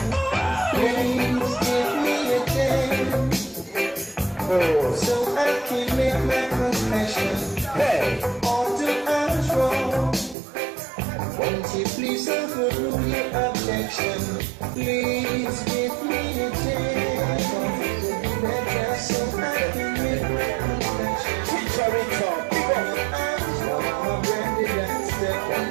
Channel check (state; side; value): drops out; left; at 10.4 s